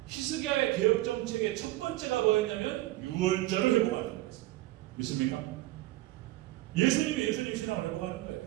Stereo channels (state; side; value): quieter; left; 17.1 dB